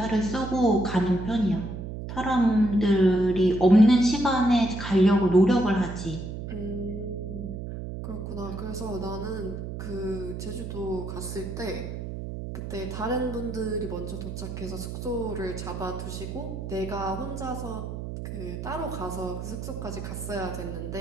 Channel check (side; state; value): right; noise; hum, 7 dB below the sound